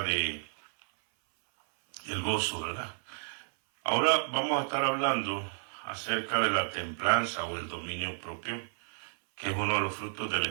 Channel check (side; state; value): left; silent; 57 dB below the other